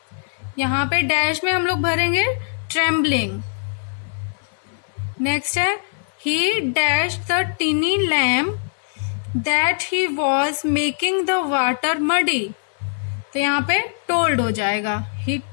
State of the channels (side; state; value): right; silent; 56 dB below the other